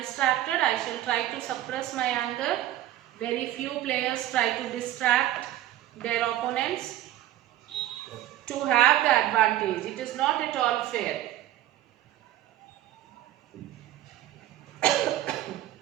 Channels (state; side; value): quieter; left; 13.7 dB